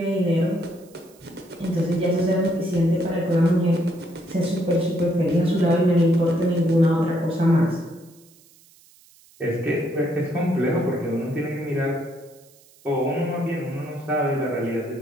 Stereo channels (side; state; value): right; noise; hiss, 28 dB below the sound